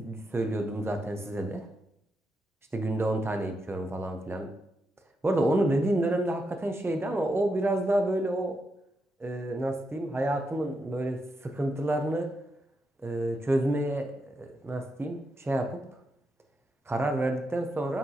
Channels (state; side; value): normal; both; correlation 0.84